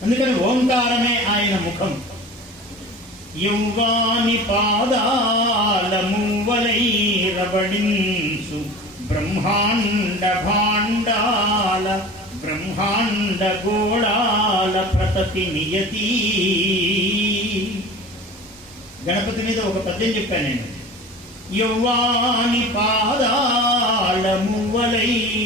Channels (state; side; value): normal; both; correlation 0.38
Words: అందుకని ఓంకారమే ఆయన ముఖం. యౌవాని పాదాల మూవలై రబడించు బ్రహ్మాండ భాండాల బ్రహ్మాండ గోళాల ప్రతతి నియతి. గణపతి మీద ఒక పద్యం చెప్పాను నేను. యౌవాని పాదాల మూవలై